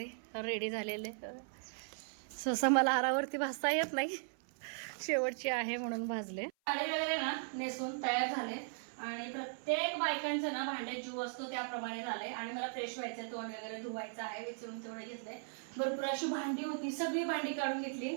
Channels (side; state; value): left; silent; 53 dB below the other